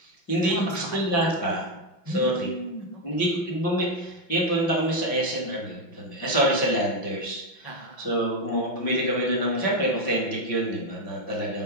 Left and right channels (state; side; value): late; right; 5.8 ms